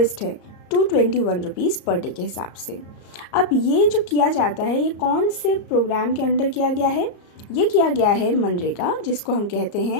है, 221 रुपीज़ पर डे के हिसाब से। अब ये जो किया जाता है, ये कौन से प्रोग्राम के अंडर किया गया है? ये किया गया है मनरेगा, जिसको हम कहते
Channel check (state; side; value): late; right; 34 ms